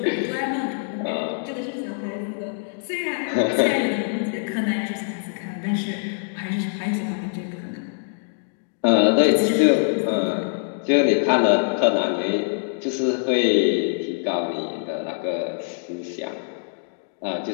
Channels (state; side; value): silent; right; digital silence